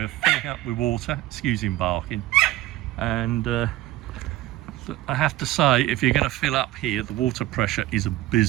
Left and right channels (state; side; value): quieter; left; 15.7 dB